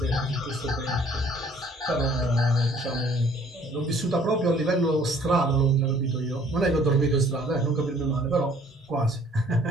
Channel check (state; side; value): normal; both; correlation 0.57